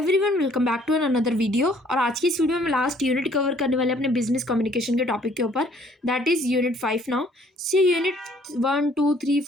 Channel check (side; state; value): both; normal; correlation 0.60